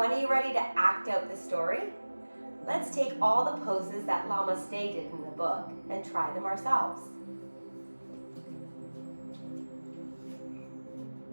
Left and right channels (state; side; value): inverted; both; correlation -1.00